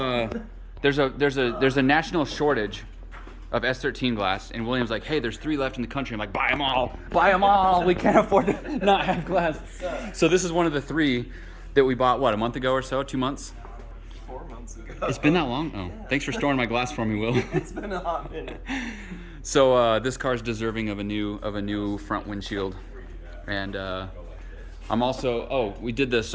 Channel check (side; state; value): both; identical; correlation 1.00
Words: there's a national shortage of S13 glass, and William's like, hey, there's 3 left in the country. I'm like, buy them all. We can't afford to not have glass. So this is one of the 3 that we bought, what, a month ago or so, 2 months? 4 months ago. It's been that long? Oh, Yeah. thanks for storing my glass for me, Will. It's been a hot minute. So this car's deserving of a new front windshield, and I'm also we did the